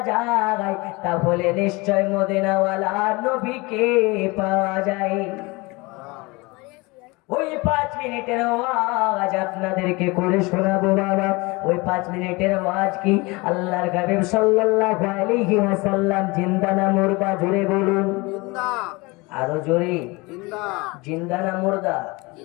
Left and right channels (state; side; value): quieter; right; 24.9 dB